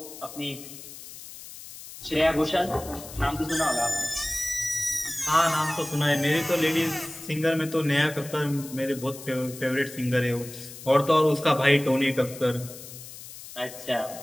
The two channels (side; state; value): left; noise; hiss, 14 dB below the sound